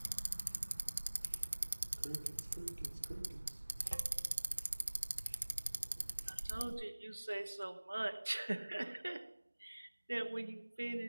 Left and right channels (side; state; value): both; inverted; correlation -1.00